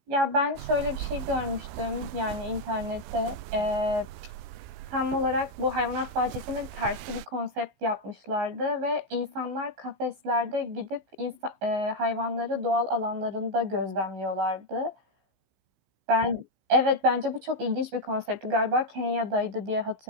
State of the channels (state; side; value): late; left; 16 ms